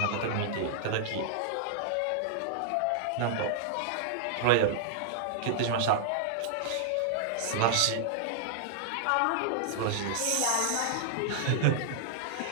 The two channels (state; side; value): different; both; correlation -0.01